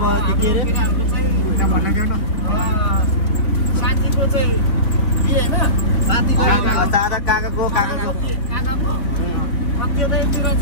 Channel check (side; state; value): right; late; 3.5 ms